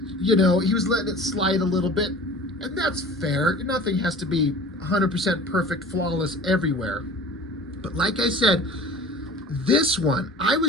he was letting it slide a little bit. And that's fair. Nothing has to be 100% perfect, flawless everywhere. But like I said, this one, I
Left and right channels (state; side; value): normal; both; correlation 0.42